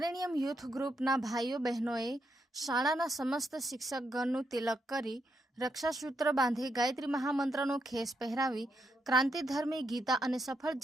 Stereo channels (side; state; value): both; normal; correlation 0.80